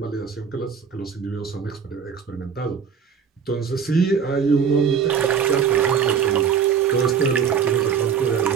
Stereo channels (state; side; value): quieter; left; 7.0 dB